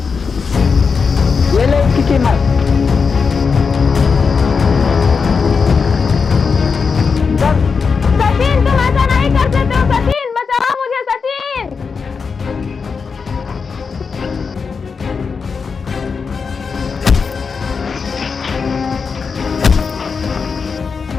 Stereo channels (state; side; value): quieter; right; 5.3 dB